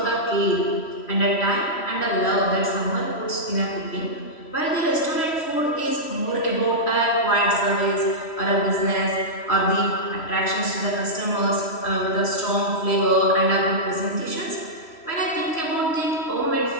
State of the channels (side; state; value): right; late; 3.1 ms